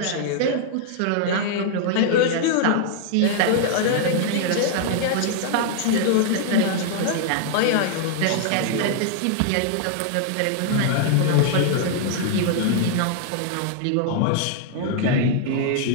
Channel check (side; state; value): both; different; correlation 0.00